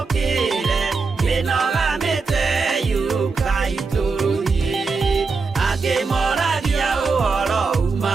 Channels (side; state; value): left; quieter; 4.5 dB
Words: mĩnogamĩte yuka itũrũhi. Angĩmoragia ũhoro